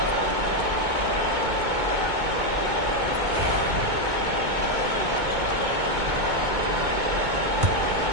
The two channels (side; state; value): left; late; 2.2 ms